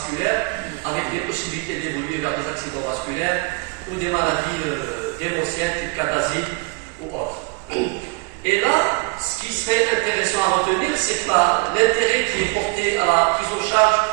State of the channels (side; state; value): left; quieter; 27.7 dB